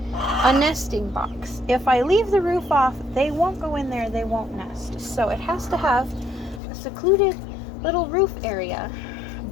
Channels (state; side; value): drops out; right; at 6.6 s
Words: a nesting box. If I leave the roof off, they won't go in there, they won't nest. So it has to have a secluded little roof area.